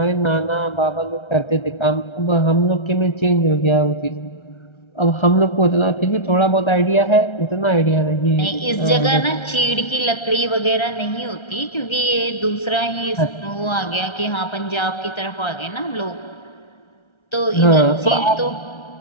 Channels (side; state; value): right; late; 1.3 ms